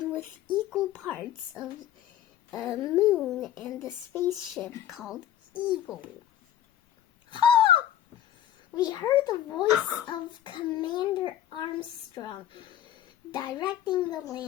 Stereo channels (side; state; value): right; quieter; 11.4 dB